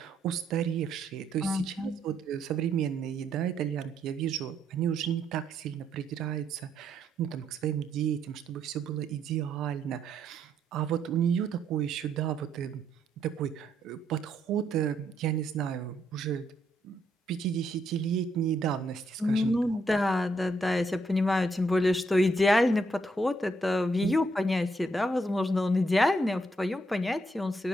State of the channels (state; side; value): normal; both; correlation 0.75